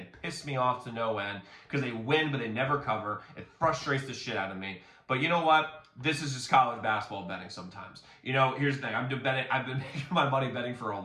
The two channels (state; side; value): identical; both; correlation 1.00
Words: piss me off to no end because they win, but they never cover. It frustrates the shit out of me. But you know what? This is just college basketball betting sometimes. Here's the thing. I've been making my money betting for a